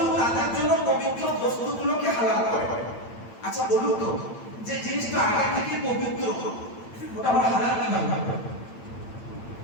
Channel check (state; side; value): late; right; 8.9 ms